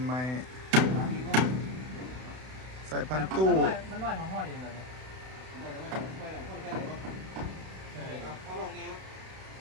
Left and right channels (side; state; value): left; late; 32 ms